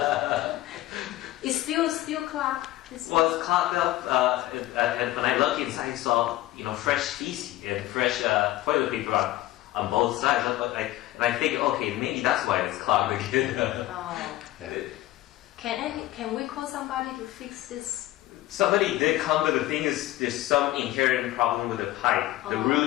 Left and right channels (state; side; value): quieter; right; 16.0 dB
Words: It's still clogged. Well, it's clogged up, and when I look inside, I saw fresh feces and fresh toilet paper on both sides. And I think, okay, maybe that's why it's clogged again. Yeah. Can we call somebody to fix this? Somebody did come, but the thing is, there's some inherent problem with the pipe. The